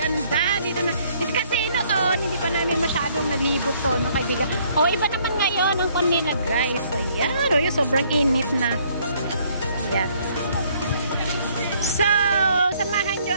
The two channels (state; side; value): inverted; both; correlation -0.64